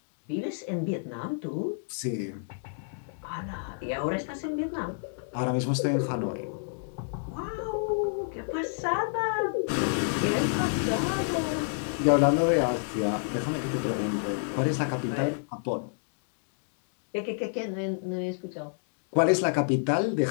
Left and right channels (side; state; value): right; silent; digital silence